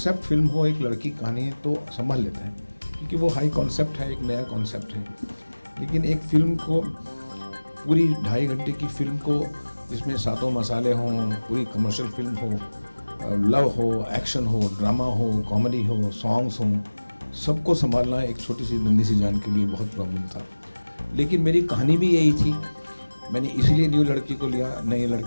फिल्म हो, एक लड़की कहानी है तो संभाल लेते हैं, क्योंकि वो हाई कॉन्सेप्ट है, एक नया कॉन्सेप्ट है। लेकिन एक फिल्म को, पूरी 2.5 घंटे की फिल्म को, जिसमें सातों मसाले हों, पूरी कमर्शियल फिल्म हो, लव हो, एक्शन हो, ड्रामा हो, कॉमेडी हो, सॉन्ग्स हों, सबको संभालना एक छोटी सी नन्ही सी जान के लिए बहुत प्रॉब्लम था। लेकिन मेरी कहानी भी यही थी, मैंने इसलिए नई लड़की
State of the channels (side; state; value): both; inverted; correlation -1.00